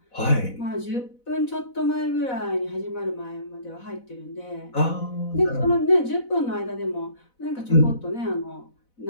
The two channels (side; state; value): right; late; 4.0 ms